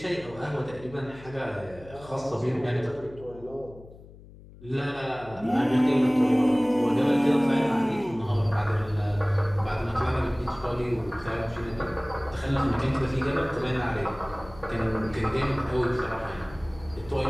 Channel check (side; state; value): left; noise; hum, 20 dB below the sound